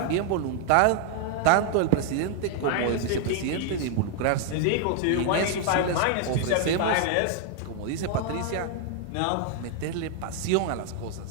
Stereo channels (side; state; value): both; different; correlation 0.00